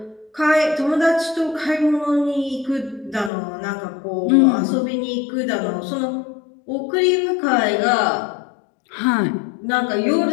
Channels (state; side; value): drops out; right; at 3.3 s